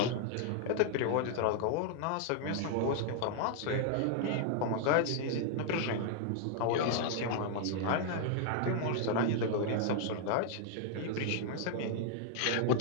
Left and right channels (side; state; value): both; different; correlation 0.00